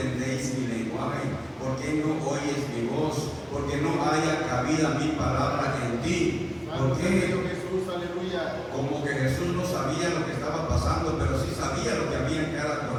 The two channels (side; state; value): both; identical; correlation 1.00